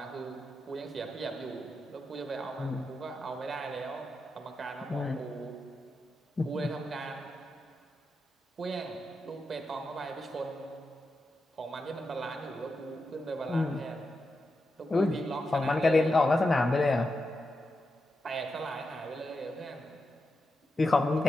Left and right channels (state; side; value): normal; both; correlation 0.88